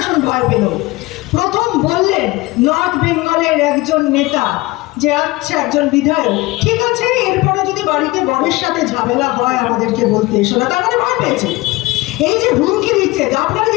ভয় পেল। প্রথম বললেন নর্থ বেঙ্গলের একজন নেতা যে আচ্ছা একজন বিধায়ক, ঠিক আছে এরপরে যদি বাড়িতে বরের সাথে ঝামেলা হয় আমাদেরকে বলতে এসো না, তার মানে ভয় পেয়েছে। এই যে হুমকি দিচ্ছে, আপনাকে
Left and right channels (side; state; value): right; quieter; 21.1 dB